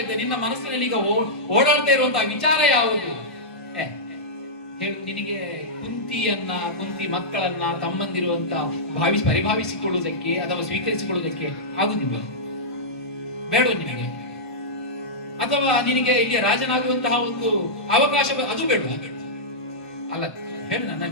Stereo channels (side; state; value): right; late; 1.4 ms